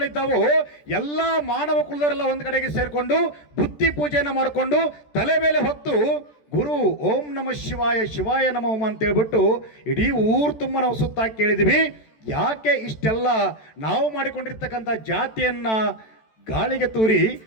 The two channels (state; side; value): late; right; 14 ms